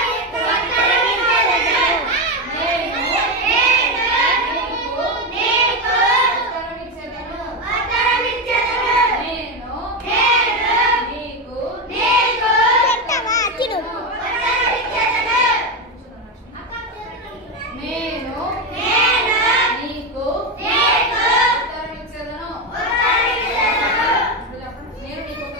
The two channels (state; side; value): normal; both; correlation 0.12